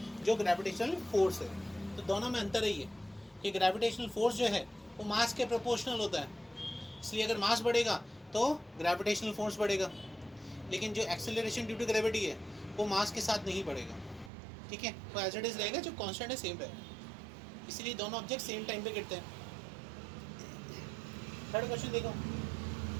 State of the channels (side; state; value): left; drops out; at 14.3 s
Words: जो ग्रेविटेशनल फोर्स है। तो दोनों में अंतर है ये कि ग्रेविटेशनल फोर्स जो है वो मास के प्रोपोर्शनल होता है, इसलिए अगर मास बढ़ेगा तो ग्रेविटेशनल फोर्स बढ़ेगा, लेकिन जो एक्सेलरेशन ड्यू टू ग्रेविटी है वो मास के साथ नहीं बढ़ेगा, ठीक है, वो एज इट इज रहेगा, जो कांस्टेंट है सेम रहेगा, इसीलिए दोनों ऑब्जेक्ट सेम टाइम पे गिरते हैं। थर्ड क्वेश्चन देखो,